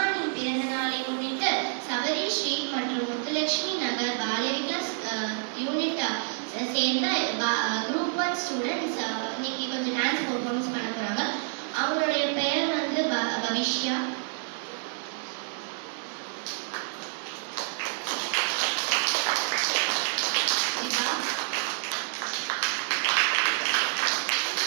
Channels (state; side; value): silent; left; 59 dB below the other